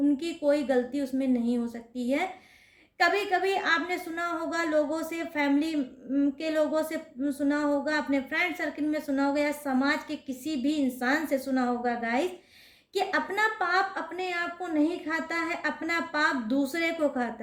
कोई गलती उसमें नहीं हो सकती है। कभी कभी आपने सुना होगा लोगों से, फैमिली के लोगों से सुना होगा, अपने फ्रेंड सर्किल में सुना होगा या समाज के किसी भी इंसान से सुना होगा गाइस, कि अपना पाप अपने आप को नहीं खाता है, अपना पाप दूसरे को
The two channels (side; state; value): both; identical; correlation 1.00